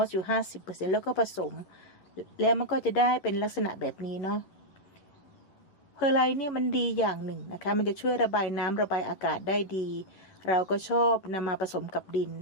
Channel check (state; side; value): late; right; 11 ms